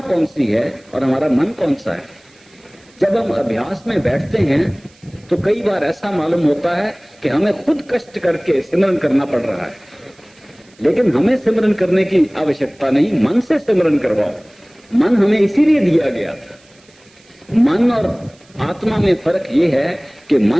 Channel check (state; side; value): noise; right; hiss, 30 dB below the sound